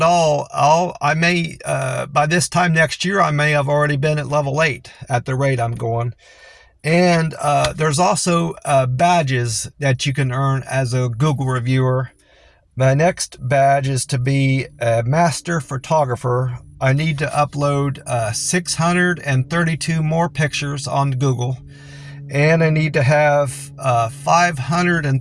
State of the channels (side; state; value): both; identical; correlation 1.00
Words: all, I may by this time next year I may have already been at level 8 at the rate I'm going. And there's also badges that you can earn as a Google reviewer. My next badge is to be a master photographer. I need to upload 632 more pictures on Google, and I need to have